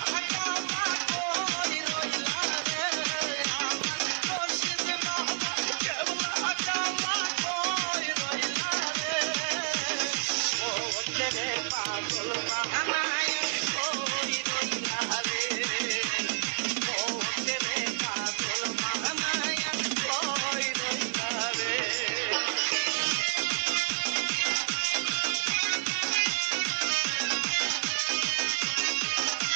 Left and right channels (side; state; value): left; silent; digital silence